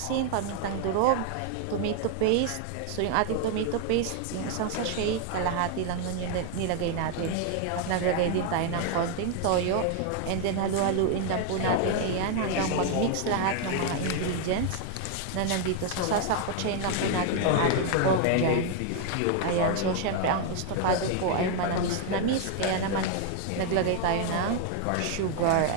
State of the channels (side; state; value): both; different; correlation 0.01